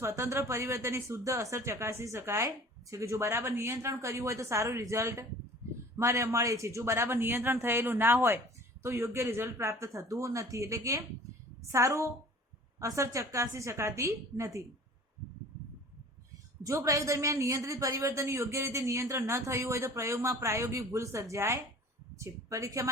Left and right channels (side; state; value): both; normal; correlation 0.45